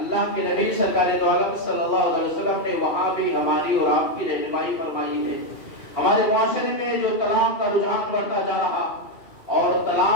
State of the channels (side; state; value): right; late; 2.6 ms